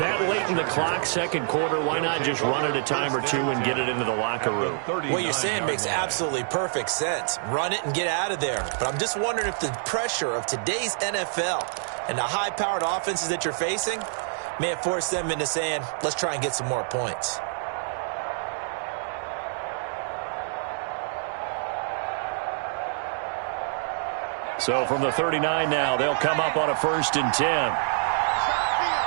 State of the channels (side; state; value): left; silent; digital silence